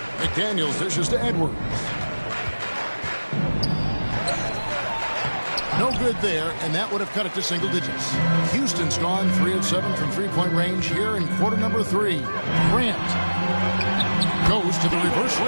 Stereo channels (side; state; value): both; inverted; correlation -1.00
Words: McDaniels dishes to Edwards. No good there, and that would have cut it to single digits. Houston's gone 3 of 7 from three-point range here in quarter number 3. Grant goes to the reverse